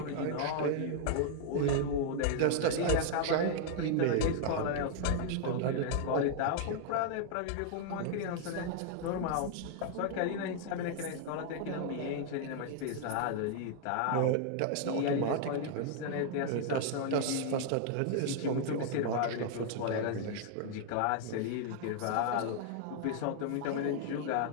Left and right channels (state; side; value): different; both; correlation 0.00